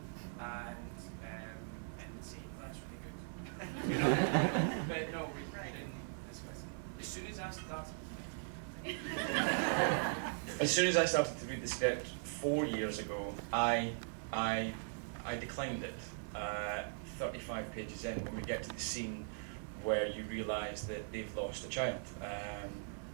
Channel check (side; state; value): left; silent; 51 dB below the other